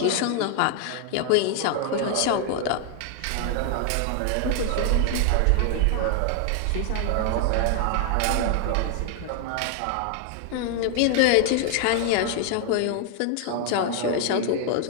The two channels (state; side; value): different; both; correlation 0.00